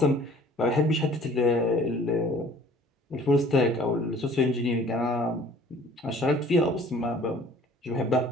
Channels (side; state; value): both; normal; correlation 0.52